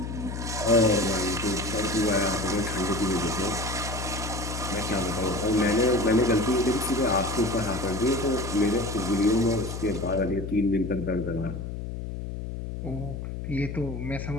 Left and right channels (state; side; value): noise; left; hum, 6 dB below the sound